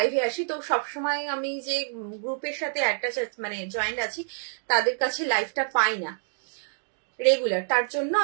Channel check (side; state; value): left; silent; digital silence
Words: আসি। তো সবসময় আমি যে গ্রুপের সাথে একটা মানে জয়েন্ট আছি তাদের কাছে লাইভটা পাই না রেগুলার, তার জন্য